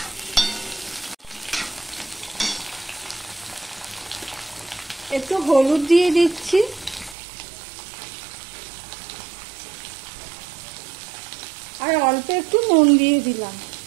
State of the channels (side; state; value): left; drops out; at 7.2 s